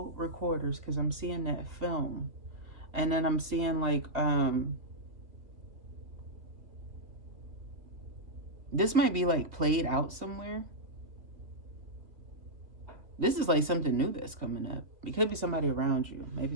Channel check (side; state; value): left; late; 2.5 ms